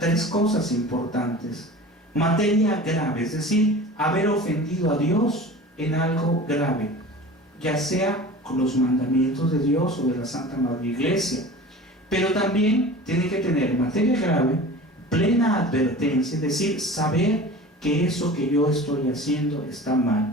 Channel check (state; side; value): normal; both; correlation 0.38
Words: cosas importantes. Materia grave, es decir, haber ofendido a Dios en algo grave, ya sea con los mandamientos de Dios o de la Santa Madre Iglesia. Pero también tiene que tener materia grave, plena advertencia, es decir, saber que eso que yo estoy haciendo está